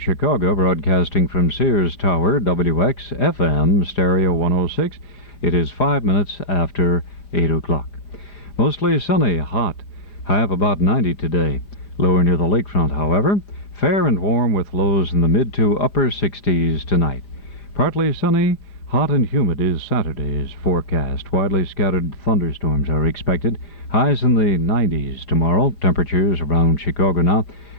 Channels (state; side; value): late; right; 4.6 ms